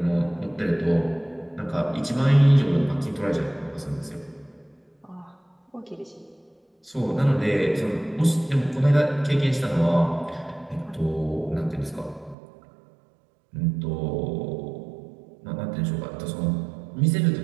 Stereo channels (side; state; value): left; drops out; at 12.4 s